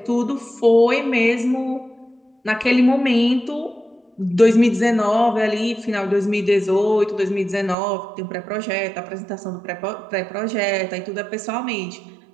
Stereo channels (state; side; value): drops out; left; at 7.8 s